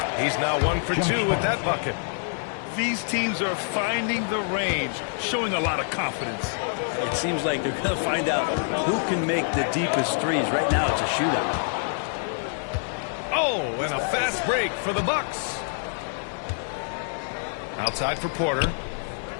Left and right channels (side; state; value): right; silent; digital silence